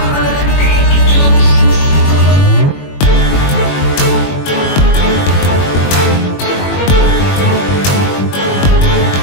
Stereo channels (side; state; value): right; late; 21 ms